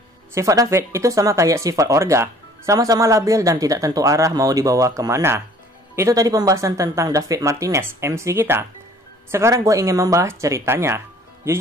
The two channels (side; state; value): both; normal; correlation 0.53